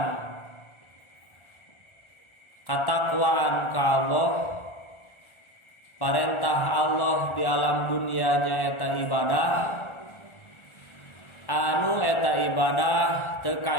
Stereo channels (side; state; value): right; late; 1.4 ms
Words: katakwaan ka Allah, perintah Allah di alam dunia nyaeta ibadah, anu eta ibadah teu